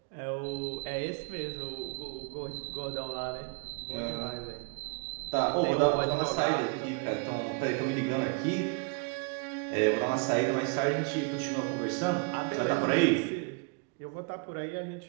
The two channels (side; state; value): left; quieter; 33.7 dB